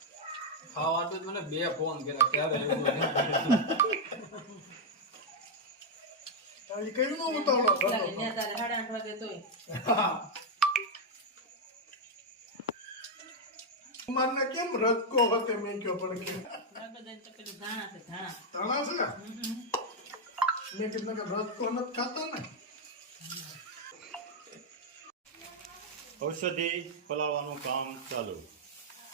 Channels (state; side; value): normal; both; correlation 0.00